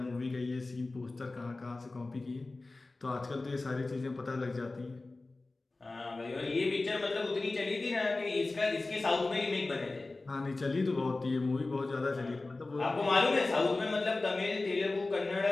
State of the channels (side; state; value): right; quieter; 3.2 dB